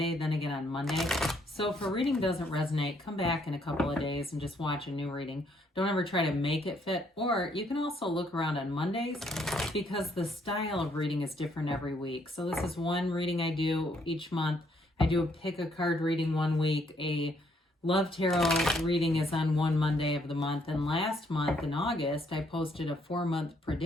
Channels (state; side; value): normal; both; correlation 0.69